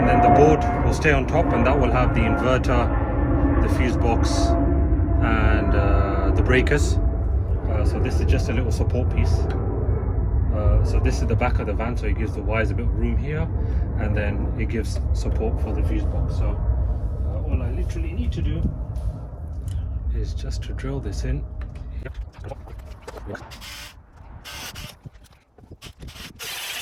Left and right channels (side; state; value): both; identical; correlation 1.00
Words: then the board will stay on top, and that will have the inverter, the fuse box, and the breakers. So this is just a little support piece. So this is the back of the van, so it gives the wires a bit of room here, and then it gives support for the fuse box. So all I literally need to do is just to drill this in.